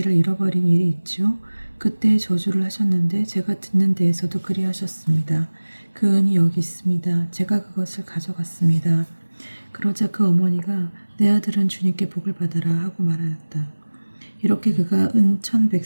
잃어버린 일이 있지요. 그때 저주를 하셨는데 제가 듣는 데에서도 그리하셨습니다. 그 은이 여기 있습니다. 제가 그것을 가져갔습니다. 그러자 그 어머니가 내 아들은 주님께 복을 받아라 하고 말하였다. 이렇게 그가 은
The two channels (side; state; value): both; inverted; correlation -1.00